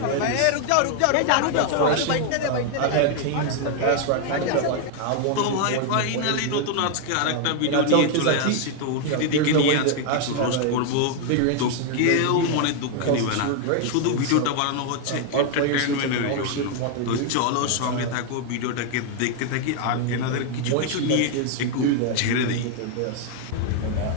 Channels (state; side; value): different; both; correlation 0.00